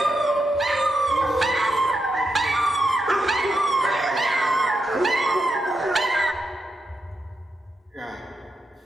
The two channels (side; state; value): both; normal; correlation 0.85